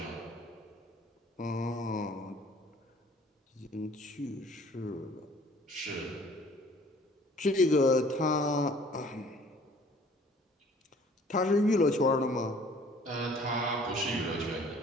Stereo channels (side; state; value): both; normal; correlation 0.54